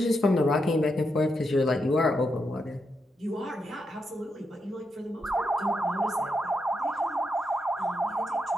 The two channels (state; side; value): normal; both; correlation 0.83